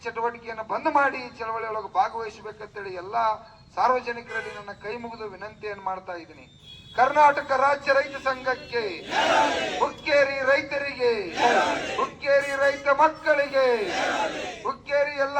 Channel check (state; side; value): identical; both; correlation 1.00